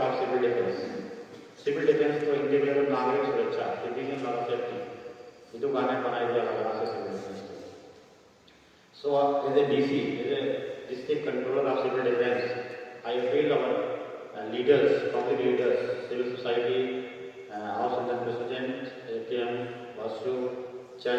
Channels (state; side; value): identical; both; correlation 1.00